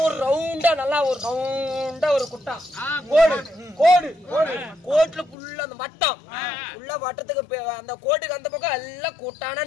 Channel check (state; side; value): drops out; right; at 5.4 s